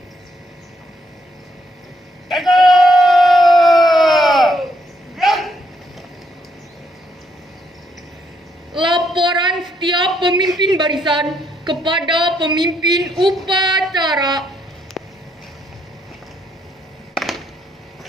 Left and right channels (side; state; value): both; normal; correlation 0.74